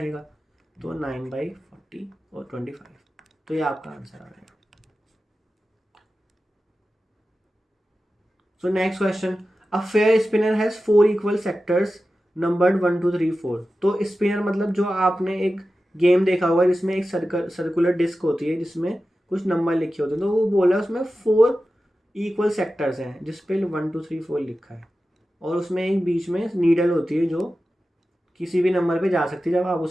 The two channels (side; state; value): both; normal; correlation 0.93